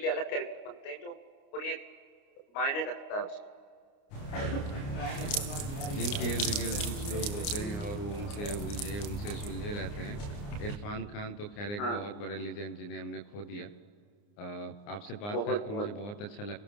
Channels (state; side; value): late; right; 29 ms